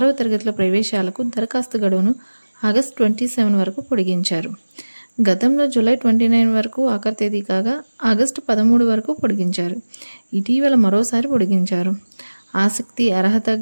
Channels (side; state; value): both; inverted; correlation -1.00